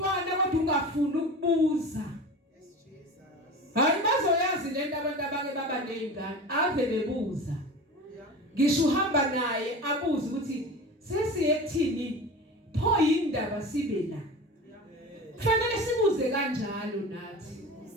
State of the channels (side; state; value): both; normal; correlation 0.32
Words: kodwa ungafuni ukubuza. Hayi bazoyazi lento abantu abake baba nezingane ave bebuza. Ngisho uhamba naye abuza ukuthi sesiye ekuthini pho indaba sibe la. Kufanele sibuze kanjalo nathi.